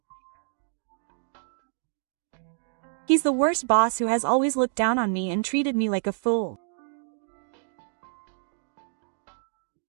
He's the worst boss who has always looked down on me and treated me like a fool.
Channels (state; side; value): silent; left; digital silence